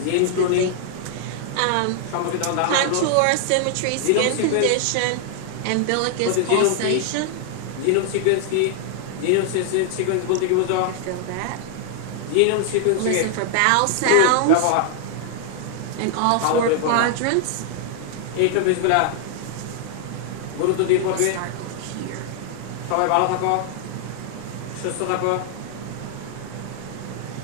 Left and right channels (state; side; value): different; both; correlation 0.00